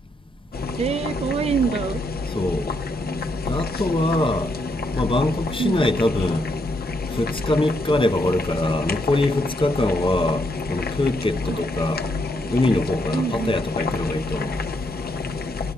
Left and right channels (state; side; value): normal; both; correlation 0.76